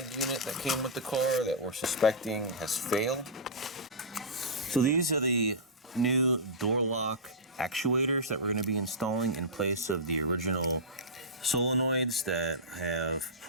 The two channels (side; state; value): both; normal; correlation -0.15